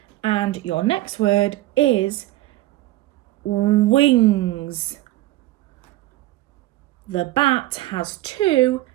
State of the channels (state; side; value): quieter; left; 16.8 dB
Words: And your next word is wings. The bat has 2